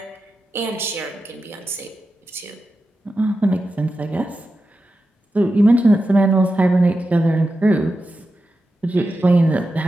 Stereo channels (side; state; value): both; normal; correlation 0.90